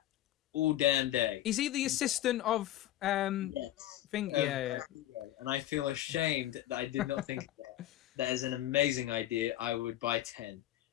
all damn day. Is he the assistant of Yes. thing? Yeah. And I feel ashamed that I did not think of that. That is an amazing idea. I would buy 10.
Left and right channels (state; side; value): quieter; right; 13.8 dB